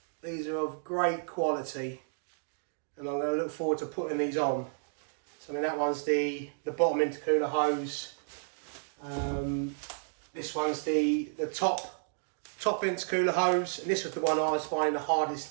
these are of great quality, and I'm going to look forward to putting these on. So I mean, that one's the bottom intercooler hose. This one's the top intercooler hose, and this was the one I was finding the hardest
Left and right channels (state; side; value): silent; left; digital silence